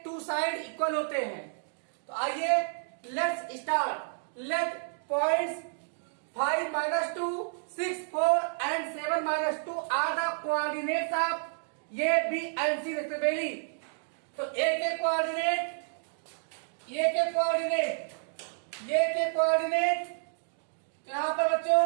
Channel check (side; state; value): left; silent; digital silence